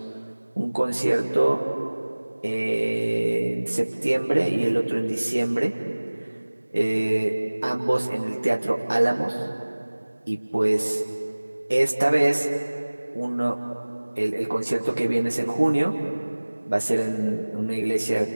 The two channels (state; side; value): inverted; both; correlation -1.00